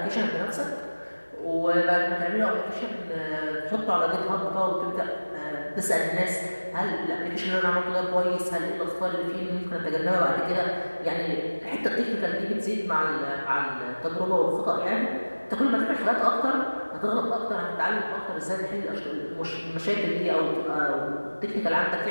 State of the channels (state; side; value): inverted; both; correlation -1.00